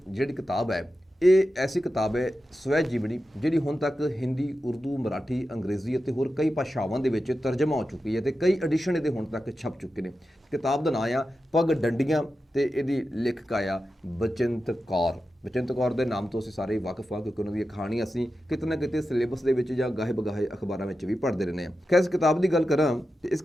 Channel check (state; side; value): normal; both; correlation 0.91